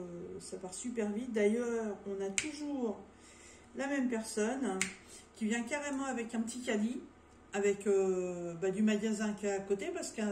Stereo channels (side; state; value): both; identical; correlation 1.00